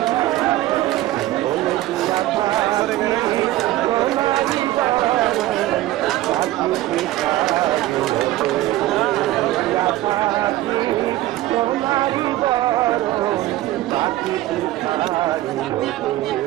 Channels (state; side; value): quieter; left; 15.8 dB